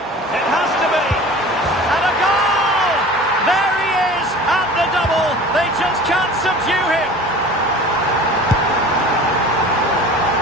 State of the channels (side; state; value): both; normal; correlation 0.40